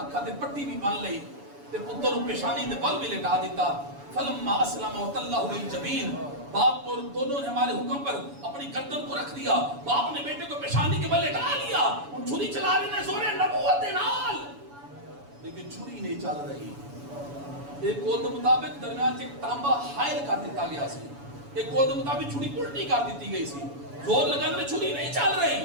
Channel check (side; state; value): left; late; 7.0 ms